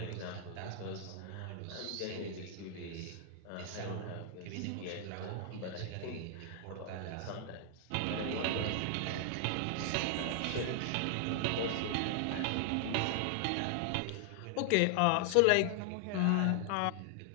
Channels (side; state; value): both; different; correlation 0.00